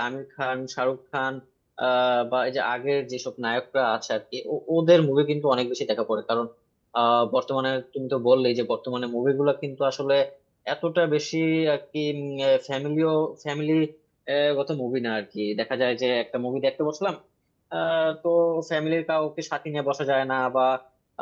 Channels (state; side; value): identical; both; correlation 1.00